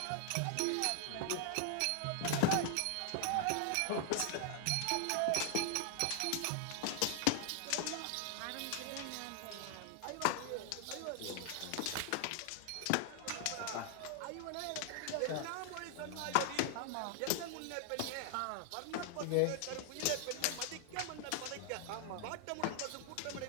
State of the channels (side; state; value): both; different; correlation 0.00